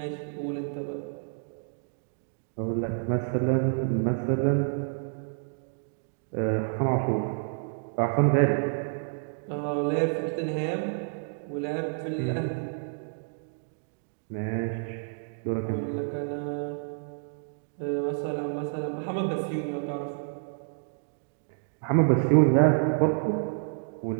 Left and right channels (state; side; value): silent; left; digital silence